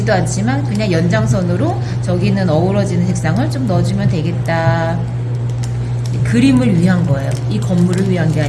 않지만 그냥 연장선으로 저기는 어우러지는 색상을 좀 넣어주면 되겠다. 그림을 위한 거예요. 이 건물을 위한 게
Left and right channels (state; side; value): identical; both; correlation 1.00